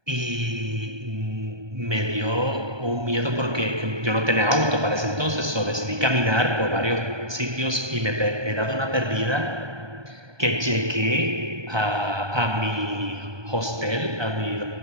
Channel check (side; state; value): left; late; 1.2 ms